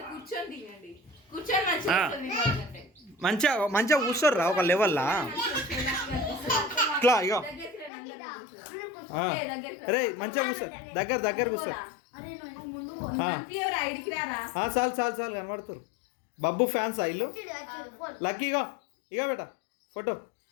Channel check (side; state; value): right; drops out; at 7.9 s